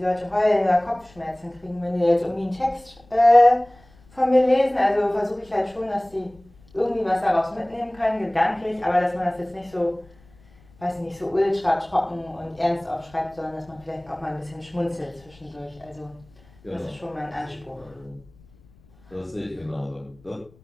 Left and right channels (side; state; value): left; noise; rumble, 28 dB below the sound